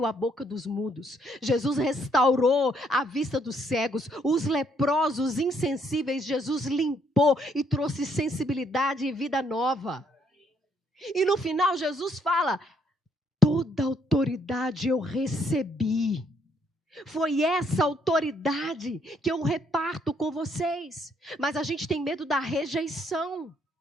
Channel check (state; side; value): normal; both; correlation 0.69